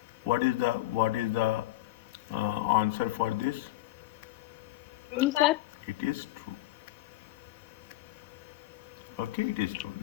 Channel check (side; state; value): right; quieter; 16.5 dB